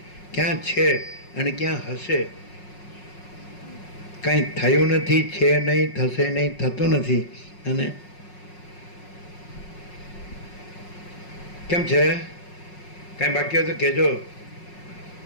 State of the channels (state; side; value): late; right; 5.5 ms